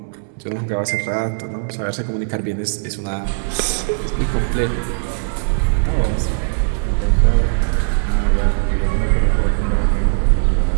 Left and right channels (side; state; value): left; silent; 64 dB below the other